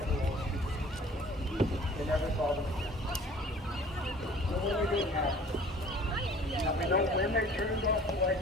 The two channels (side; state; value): both; normal; correlation 0.49